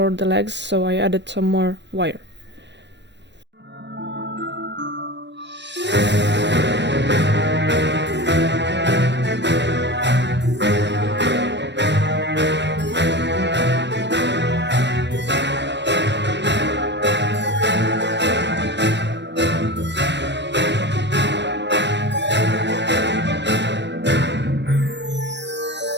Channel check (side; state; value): left; late; 0.51 ms